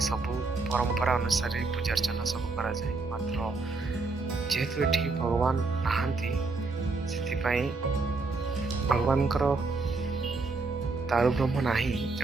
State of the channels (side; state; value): left; quieter; 3.8 dB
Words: ସବୁ ପରମ୍ପରା ଅନୁସାରେ ପୂଜାର୍ଚ୍ଚନା ସବୁ କରାଯାଏ। ମାତ୍ର ଯେହେତୁ ଏଠି ଭଗବାନ ନାହାନ୍ତି, ସେଥିପାଇଁ ଭଗବାନଙ୍କର ଦାରୁବ୍ରହ୍ମ ନାହିଁ,